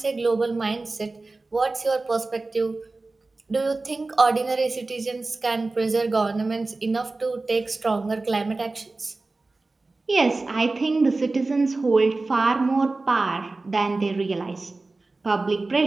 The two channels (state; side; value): quieter; left; 3.4 dB